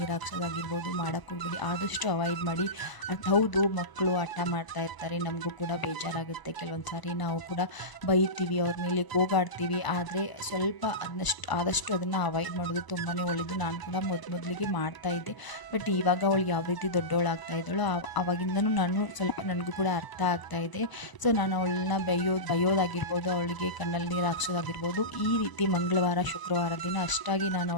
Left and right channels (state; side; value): late; right; 1.0 ms